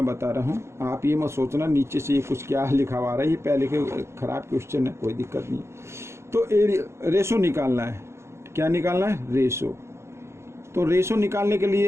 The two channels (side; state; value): left; late; 0.13 ms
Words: बता रहा हूँ, आप ये मत सोचना नीचे से ये कुछ क्या लिखा हुआ रहा है, ये पहले के खराब क्वेश्चन है, कोई दिक्कत नहीं। तो एरिया रेशो निकालना है, क्या निकालना है? रेशो। तो रेशो निकालने के